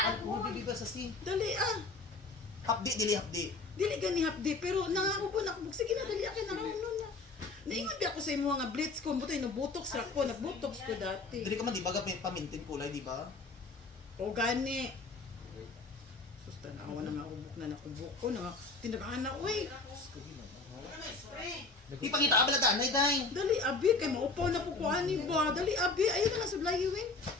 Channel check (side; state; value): right; quieter; 3.6 dB